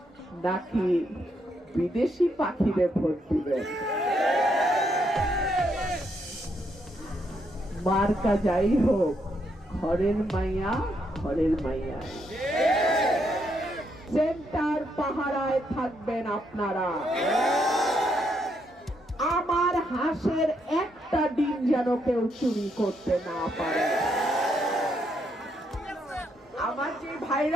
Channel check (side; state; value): both; normal; correlation 0.76